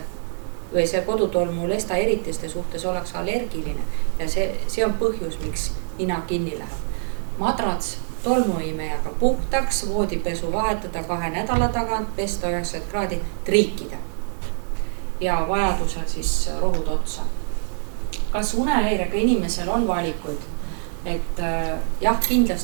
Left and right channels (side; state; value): left; silent; 60 dB below the other